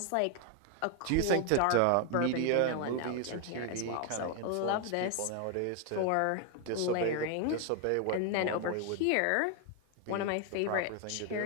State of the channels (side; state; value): both; different; correlation 0.00